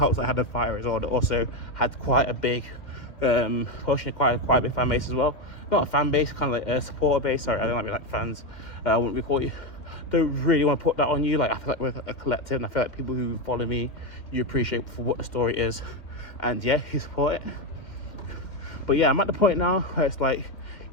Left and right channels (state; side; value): late; right; 2.1 ms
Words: that I had a fighter as well that also had quite a big pushing quite a big fan base as well. Not a fan base, kind of like a supporter base. Sorry, I don't like be like fans. I wouldn't be called you. Don't really want to put that on you. Like, I feel like we're a collective, and I feel like people who follow me, you appreciate for what the story is, and yeah, you support it. But yeah, I'm at the point now where it's like,